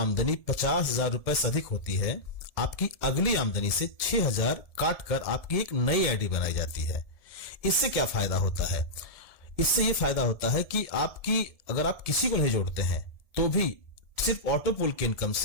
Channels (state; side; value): late; right; 1.7 ms